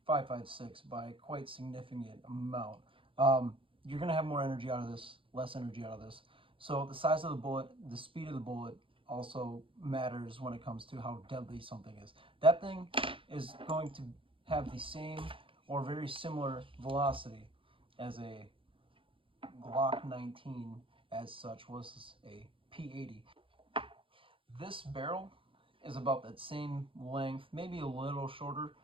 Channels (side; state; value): left; late; 0.25 ms